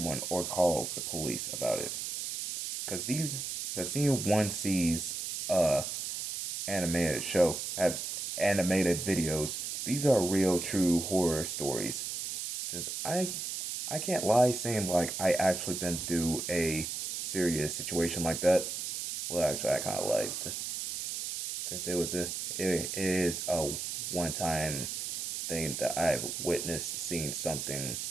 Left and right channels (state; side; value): noise; right; hiss, 4 dB below the sound